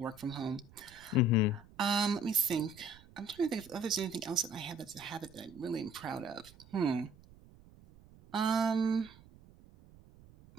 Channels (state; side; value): noise; right; rumble, 23 dB below the sound